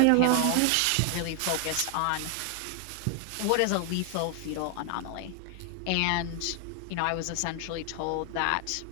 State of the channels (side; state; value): both; different; correlation 0.00